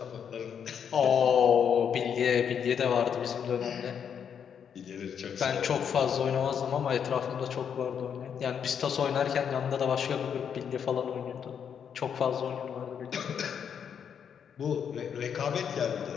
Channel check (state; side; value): quieter; right; 7.8 dB